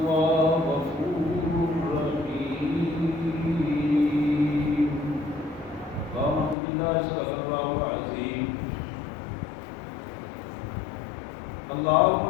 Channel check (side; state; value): right; drops out; at 6.6 s